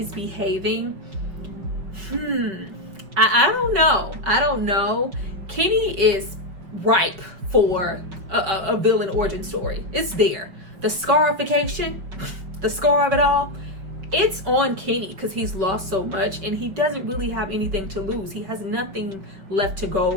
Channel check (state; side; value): late; left; 5.5 ms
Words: behaving, I don't know. Kenny is ripe for a villain origin story. It's there. The scarification, the scar of it all, it's on Kenny, because he's lost so much and he doesn't really have anything to lose. He has nothing left to